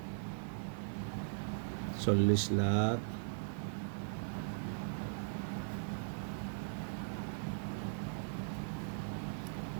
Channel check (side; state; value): left; silent; digital silence